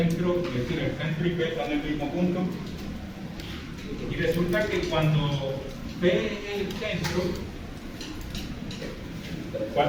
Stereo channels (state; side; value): identical; both; correlation 1.00